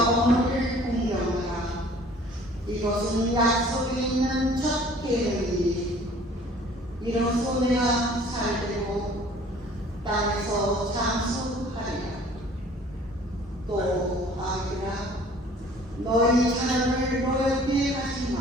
어머니를 공경하라. 이것은 약속이 있는 첫 계명이니 이로써 내가 살되고 땅에서 장수하리라. 또 아기라, 너희 자녀를 노엽게 하지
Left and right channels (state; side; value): normal; both; correlation 0.52